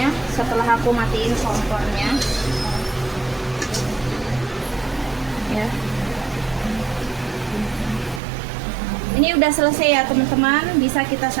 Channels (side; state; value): left; drops out; at 8.2 s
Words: setelah aku matiin kompornya. Ya. Ini udah selesai ya teman-teman, bisa kita